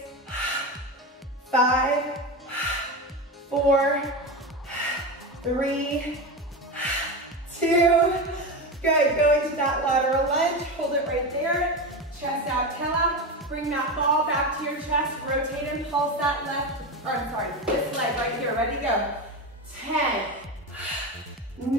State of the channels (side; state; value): both; normal; correlation 0.20